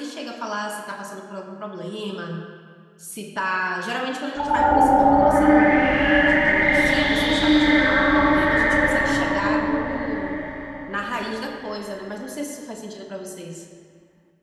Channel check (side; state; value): both; identical; correlation 1.00